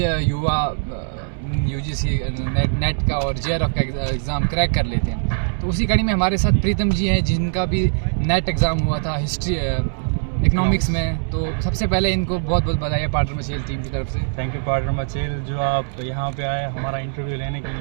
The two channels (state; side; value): silent; left; digital silence